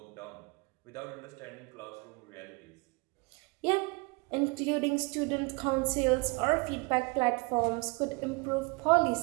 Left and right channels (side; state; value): left; quieter; 28.0 dB